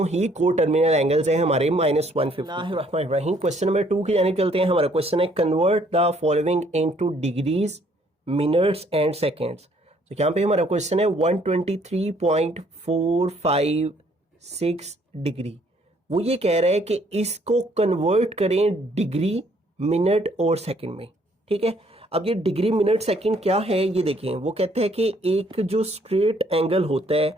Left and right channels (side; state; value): both; normal; correlation 0.64